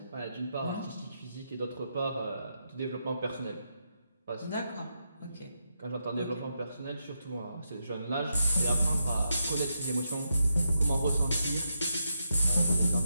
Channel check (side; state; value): both; inverted; correlation -0.83